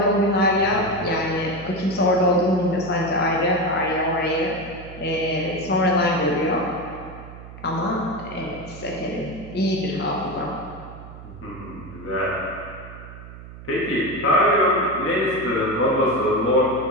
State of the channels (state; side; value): noise; right; hum, 15 dB below the sound